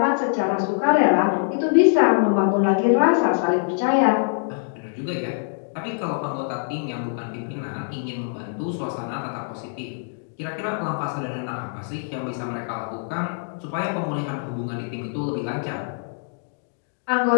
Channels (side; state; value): right; silent; digital silence